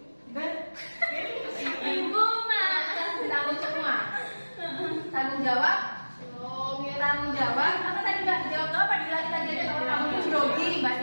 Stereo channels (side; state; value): both; inverted; correlation -1.00